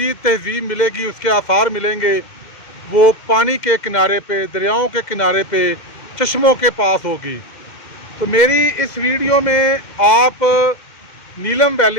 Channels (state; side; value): late; right; 2.1 ms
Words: तहजीब मिलेगी, उसके आसार मिलेंगे, वो पानी के किनारे पे, दरियाओं के किनारे पे, चश्मों के पास होगी। तो मेरी इस वीडियो में आप नीलम